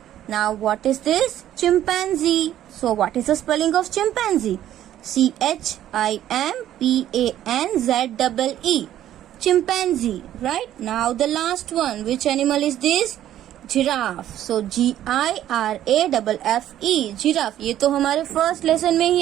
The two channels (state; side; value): quieter; left; 12.0 dB